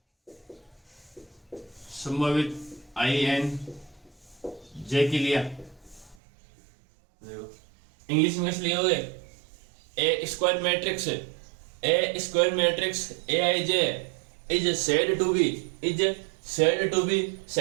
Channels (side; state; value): left; drops out; at 6.2 s